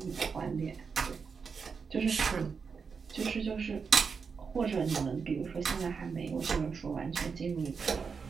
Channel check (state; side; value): quieter; left; 5.6 dB